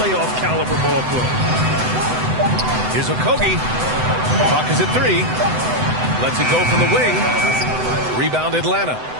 caliber ball club. Here's Okogie. Clock is at 3. Lets it go from the wing. Rebound Atlanta.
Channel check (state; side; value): late; left; 7.9 ms